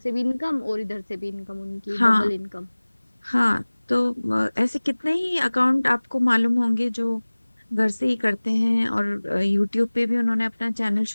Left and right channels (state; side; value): inverted; both; correlation -1.00